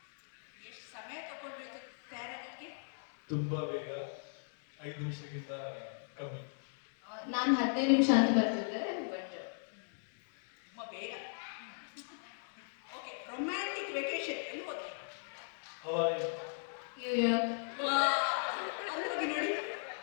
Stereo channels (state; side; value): silent; right; digital silence